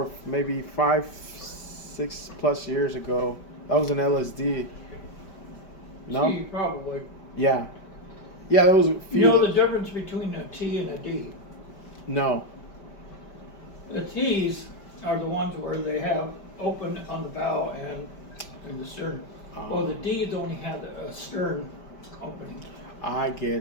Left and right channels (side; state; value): right; late; 5.1 ms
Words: maybe 5, 6+ years ago. That was an LSD. No? C, probably. Yeah. Yeah, there was a You few. know the difference between a T and a D? No. The T's are the ones where they have open on the bow and in the stern. Well, the D's only have a stern opening. I